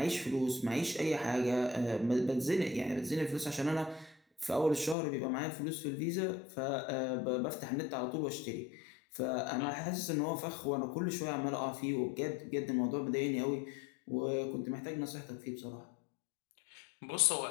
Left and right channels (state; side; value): drops out; right; at 5.0 s